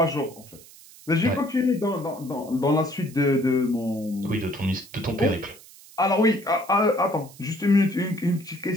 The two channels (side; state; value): right; noise; hiss, 21 dB below the sound